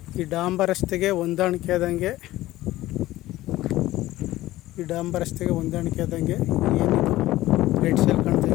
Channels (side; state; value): right; quieter; 16.3 dB